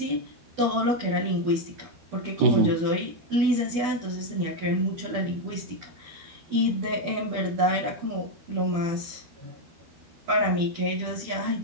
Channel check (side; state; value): left; late; 12 ms